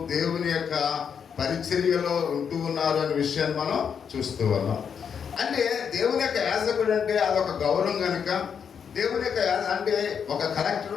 దేవుని యొక్క పరిచర్యలో ఉంటూ ఉన్నారు అనే విషయాన్ని మనం చూస్తూ ఉన్నాం. అంటే దేవుని యొక్క యాజకుడు అంటే అదొక గౌరవం కనుక దేవుని యొక్క అంటే ఒక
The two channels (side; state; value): right; quieter; 7.2 dB